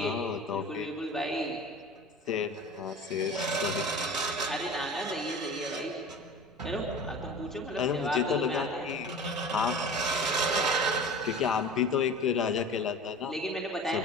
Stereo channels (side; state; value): both; normal; correlation 0.38